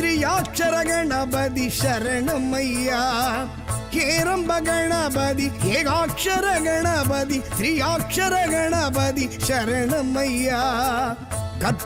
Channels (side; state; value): both; identical; correlation 1.00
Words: கணபதி சரணமையா ஹேரம்ப கணபதி ஏகாட்சர கணபதி திரியாட்சர கணபதி சரணமையா